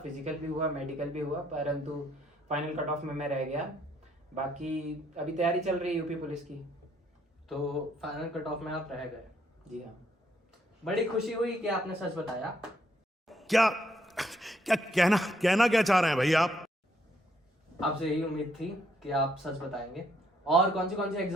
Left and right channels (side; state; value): both; normal; correlation 0.71